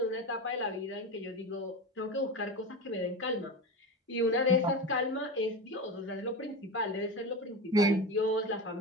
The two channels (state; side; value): normal; both; correlation 0.23